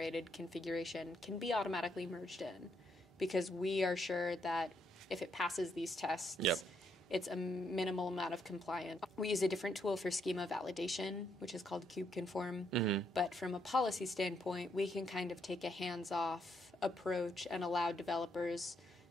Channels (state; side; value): normal; both; correlation 0.76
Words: configuration can be automatically merged in, because we are sure that if it passes these tests, it's a minimal amount of compliance. We use a different tool for schema validation, which is called Kubeconform. But from a policy standpoint, we can kind of take a hands-off approach and allow developers